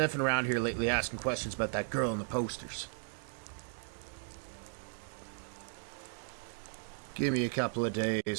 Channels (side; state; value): left; silent; 54 dB below the other